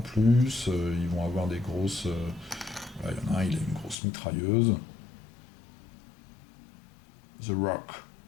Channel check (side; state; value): right; drops out; at 4.0 s